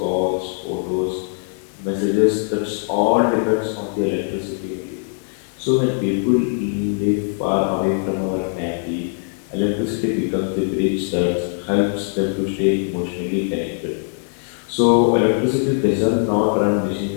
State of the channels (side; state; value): right; silent; 61 dB below the other